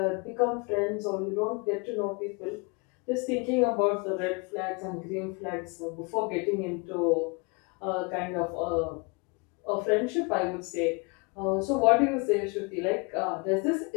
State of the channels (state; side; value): quieter; right; 30.7 dB